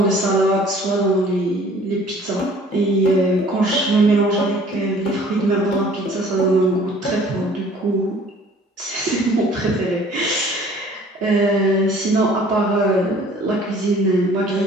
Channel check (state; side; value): normal; both; correlation 0.52